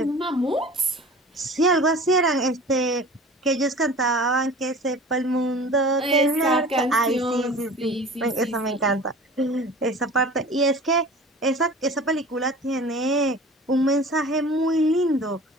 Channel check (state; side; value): normal; both; correlation 0.40